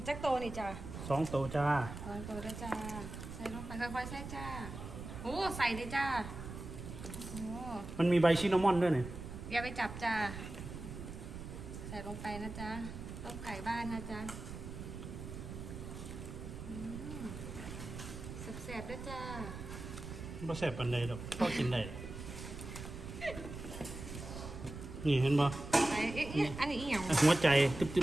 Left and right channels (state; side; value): noise; right; rumble, 9 dB below the sound